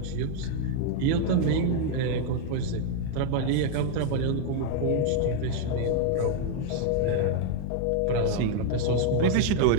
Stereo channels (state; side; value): different; both; correlation 0.00